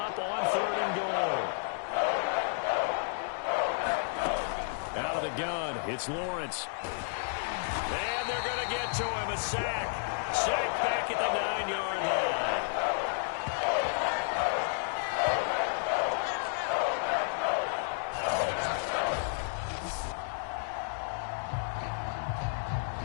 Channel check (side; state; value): right; silent; digital silence